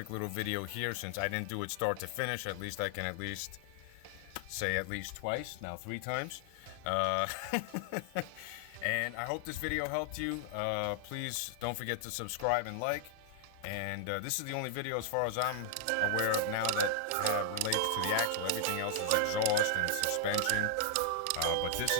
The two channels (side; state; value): both; different; correlation 0.00